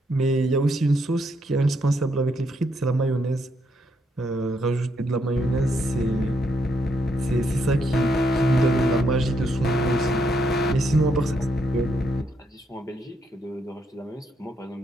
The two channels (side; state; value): both; normal; correlation 0.76